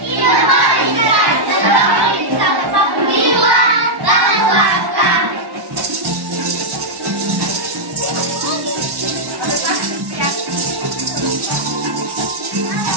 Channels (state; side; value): late; left; 1.1 ms